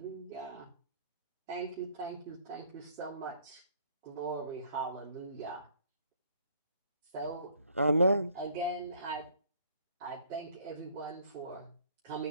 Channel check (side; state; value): both; inverted; correlation -0.60